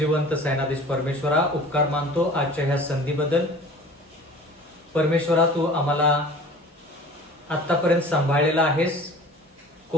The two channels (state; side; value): normal; both; correlation 0.43